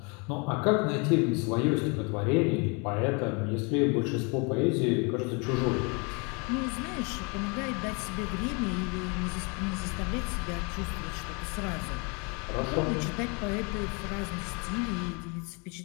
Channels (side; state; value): right; quieter; 32.1 dB